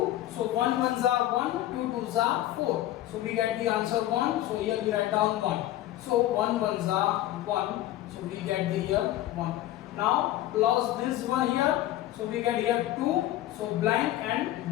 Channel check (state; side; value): quieter; right; 14.3 dB